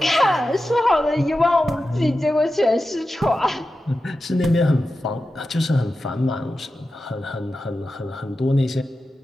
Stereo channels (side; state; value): both; normal; correlation 0.92